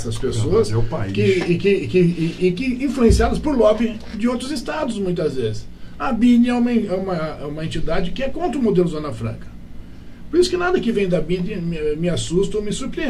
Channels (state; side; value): identical; both; correlation 1.00